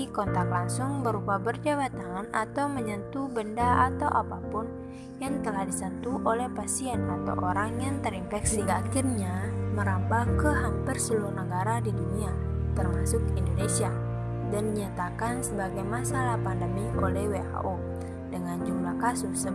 kontak langsung berupa berjabat tangan atau menyentuh benda atau apapun yang telah disentuh oleh pasien atau orang yang terinfeksi, hingga akhirnya merambah ke hampir seluruh negara di dunia, termasuk Indonesia, dan dinyatakan sebagai masalah pandemi oleh WHO dengan jumlah kasus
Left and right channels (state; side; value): identical; both; correlation 1.00